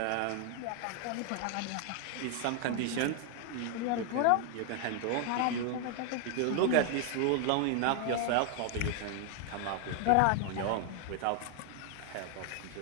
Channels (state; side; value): different; both; correlation 0.00